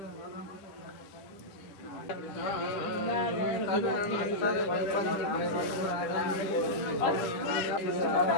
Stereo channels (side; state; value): right; late; 10 ms